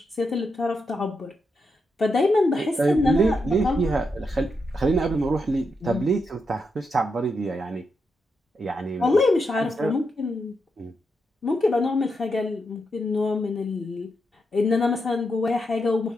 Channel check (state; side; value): normal; both; correlation 0.84